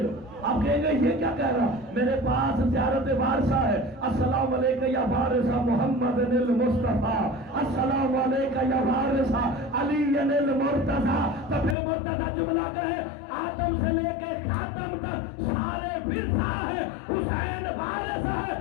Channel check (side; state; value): right; drops out; at 11.8 s